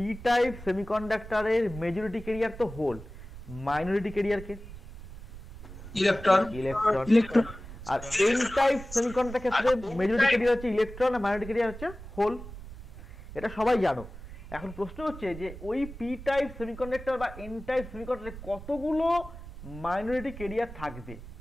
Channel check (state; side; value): noise; right; rumble, 13 dB below the sound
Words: টাইপ সেমিকন্ডাক্টরের মেজরিটি কেরিয়ার তো হোল, মাইনরিটি কেরিয়ার কে, ইলেকট্রন। ইলেকট্রন। আর এন টাইপ সেমিকন্ডাক্টরের ক্ষেত্রে মেজরিটি কেরিয়ার হচ্ছে ইলেকট্রন, আর মাইনরিটি কেরিয়ার হচ্ছে হোল, এটা সবাই জানো। এখন প্রশ্ন হচ্ছে যে ওই পি টাইপ সেমিকন্ডাক্টর বা এন টাইপ সেমিকন্ডাক্টরে কতগুলো মাইনরিটি কেরিয়ার থাকবে